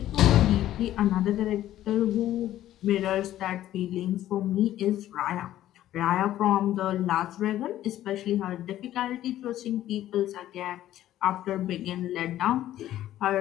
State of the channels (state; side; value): quieter; right; 13.1 dB